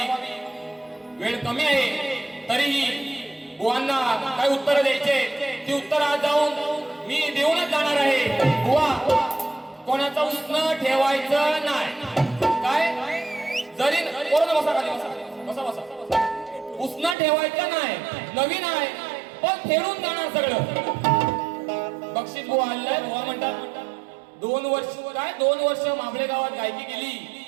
वेळ कमी आहे, तरीही बुवांना काय उत्तर द्यायचे ती उत्तर आज जाऊन मी देऊनच जाणार आहे। बुवा, कोणाचं उष्ण ठेवायचं नाही, काय जरी बसा खाली बसा बसा बसा, उष्ण ठेवायचं नाही, नवीन आहे पण फेडून जाणार सगळं। बक्षीस बुवा आलाय, बुवा म्हणतात 2 वर्ष काय 2 वर्ष माबळे गावात गायकी केली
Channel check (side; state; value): left; drops out; at 17.2 s